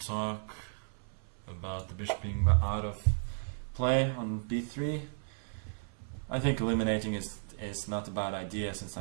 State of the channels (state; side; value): silent; left; 55 dB below the other